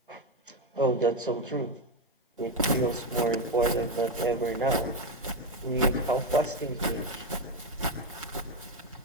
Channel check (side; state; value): both; normal; correlation 0.10